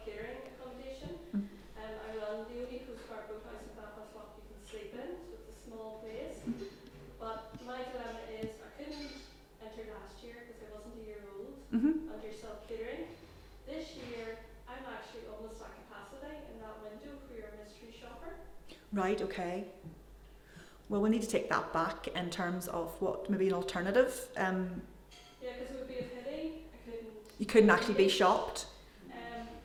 accommodation. Mm. I run the only Coast Guard boathouse in Belfast Lough you can sleep in, so it's a small place. Mhm. But my dilemma is I couldn't enter last year because I wasn't a year old Mhm. under self-catering. This year I'm actually almost at capacity in that window for your mystery shopper. Right. Okay. Well, we need to take that back in terms of what maybe an alternative. Yeah, because it would be a pity I couldn't. You couldn't actually be shopped.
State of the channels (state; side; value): identical; both; correlation 1.00